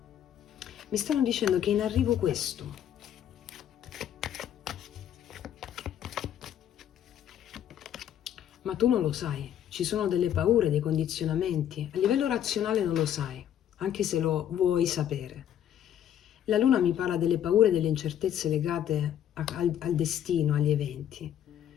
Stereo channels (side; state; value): right; quieter; 10.3 dB